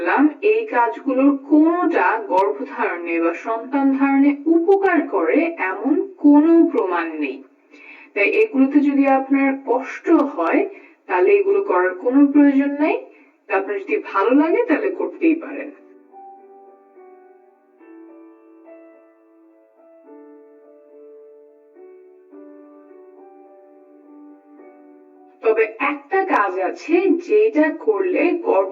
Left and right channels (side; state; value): both; identical; correlation 1.00